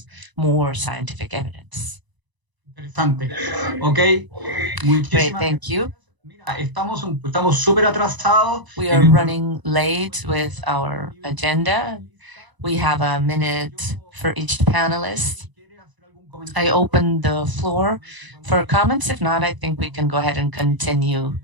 more scientific evidence. Interesante. Ok. Great, thank you. Estamos súper atrasados. We are running late with our agenda. We have a minute for each panelist. I open the floor for comments. If not, I think we can go ahead and continue.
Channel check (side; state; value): left; late; 1.0 ms